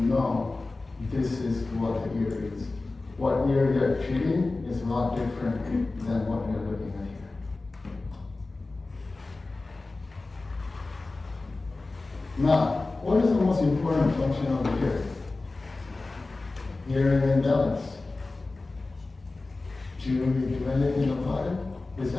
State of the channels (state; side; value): quieter; right; 3.4 dB